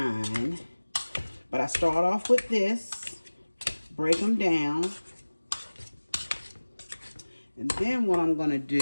But I start off with this, break them down. And then what I'm going to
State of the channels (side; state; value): both; inverted; correlation -1.00